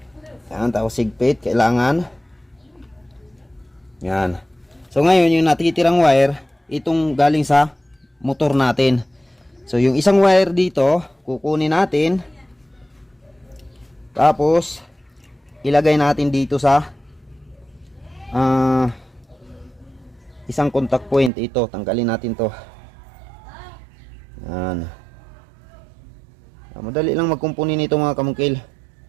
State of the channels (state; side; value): drops out; left; at 21.3 s